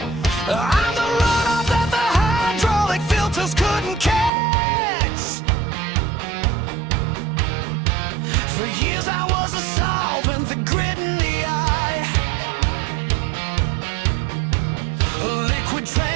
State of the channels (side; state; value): left; drops out; at 4.3 s